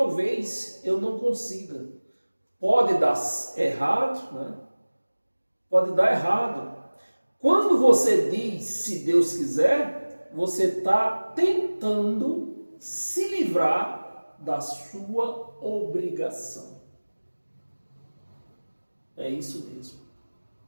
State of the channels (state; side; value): inverted; both; correlation -1.00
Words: eu não consiga. Pode dar errado, né? Pode dar errado. Quando você diz, se Deus quiser, você está tentando se livrar da sua obrigação. É isso mesmo.